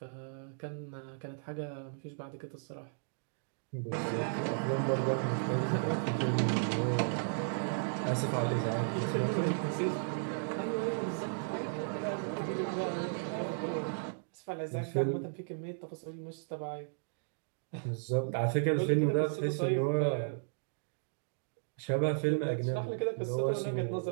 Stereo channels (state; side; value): silent; left; digital silence